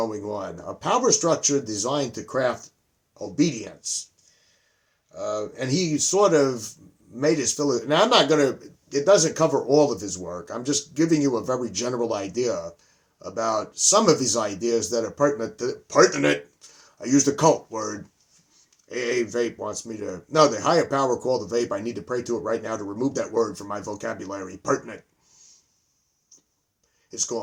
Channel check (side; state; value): both; identical; correlation 1.00